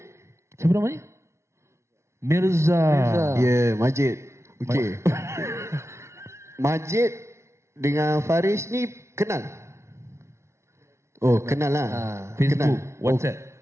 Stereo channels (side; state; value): left; late; 0.13 ms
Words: Siapa namanya? Mirza. Ya, Majid. Okey. Majid dengan Faris ni kenal? Oh, kenal lah. Facebook, kenal. WhatsApp.